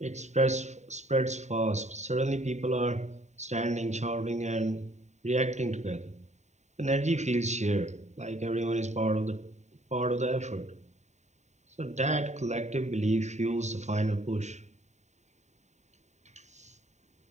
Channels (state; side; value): late; left; 0.34 ms